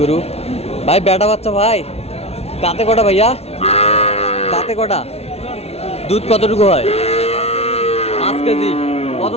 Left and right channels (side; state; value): right; late; 0.30 ms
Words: ভাই বেটা বাচ্চা ভাই, দাঁতে কটা ভাইয়া? দাঁতে কটা? দুধ কতটুকু হয়? 5 কেজি। কত